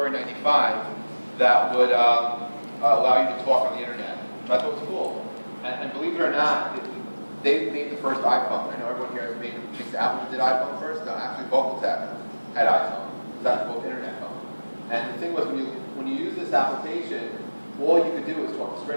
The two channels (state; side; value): inverted; both; correlation -1.00